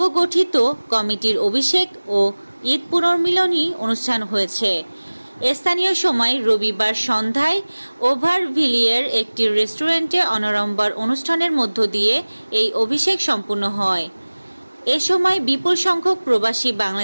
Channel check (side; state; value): both; inverted; correlation -1.00